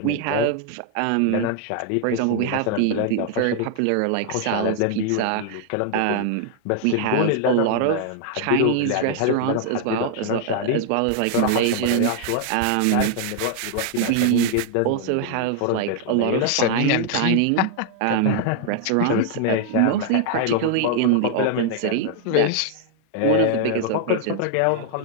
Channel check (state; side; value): different; both; correlation 0.00